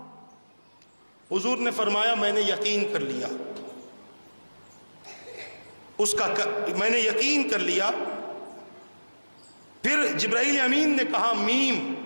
حضور نے فرمایا میں نے یقین کر لیا، میں نے یقین کر لیا۔ پھر جبرائیل امین نے کہا میم،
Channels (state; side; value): inverted; both; correlation -1.00